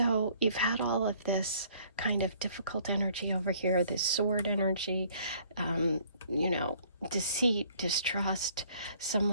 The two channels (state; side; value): inverted; both; correlation -0.59